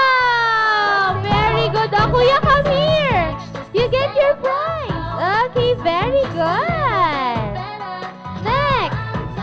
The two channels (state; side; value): identical; both; correlation 1.00